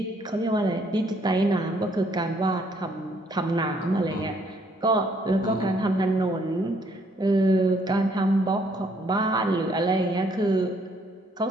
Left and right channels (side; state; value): both; normal; correlation 0.67